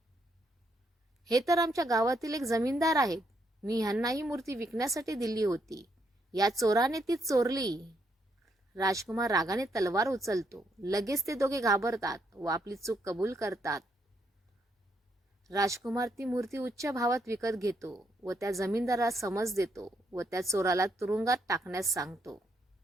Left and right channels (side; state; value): both; normal; correlation 0.76